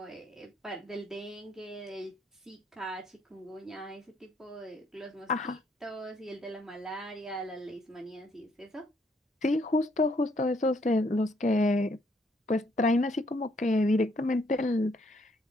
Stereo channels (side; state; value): both; normal; correlation 0.69